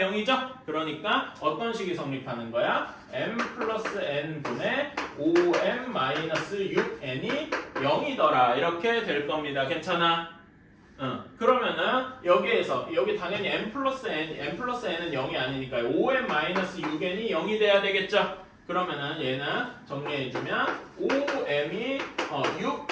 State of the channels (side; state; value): both; identical; correlation 1.00